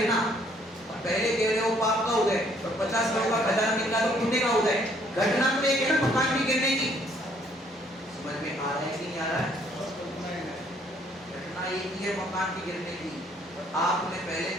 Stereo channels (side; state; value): both; normal; correlation 0.64